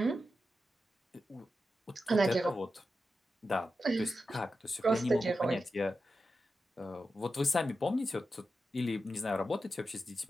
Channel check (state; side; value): normal; both; correlation 0.90